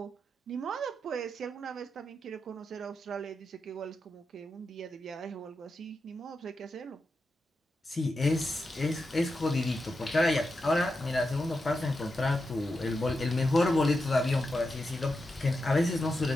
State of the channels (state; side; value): normal; both; correlation 0.88